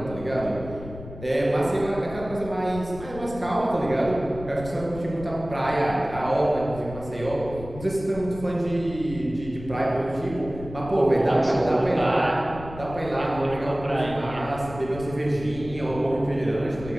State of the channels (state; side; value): noise; left; rumble, 13 dB below the sound